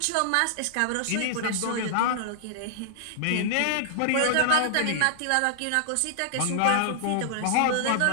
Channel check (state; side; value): different; both; correlation -0.01